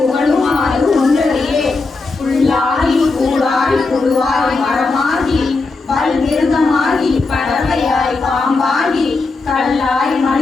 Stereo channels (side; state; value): right; quieter; 3.8 dB